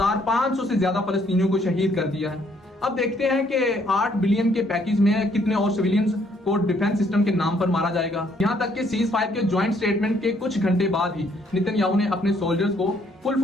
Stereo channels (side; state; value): both; normal; correlation 0.67